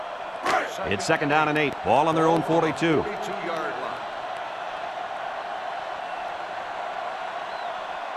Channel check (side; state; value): both; identical; correlation 1.00